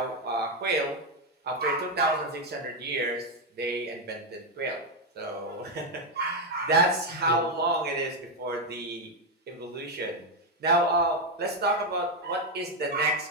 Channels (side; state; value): both; normal; correlation 0.04